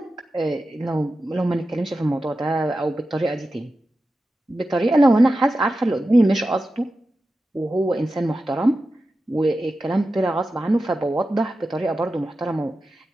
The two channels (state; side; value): normal; both; correlation 0.92